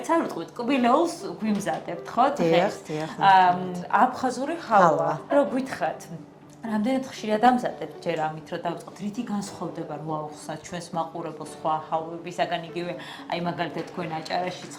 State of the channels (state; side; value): identical; both; correlation 1.00